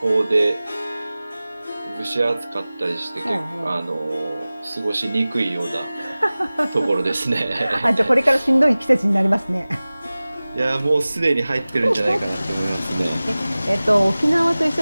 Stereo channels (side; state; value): both; inverted; correlation -0.98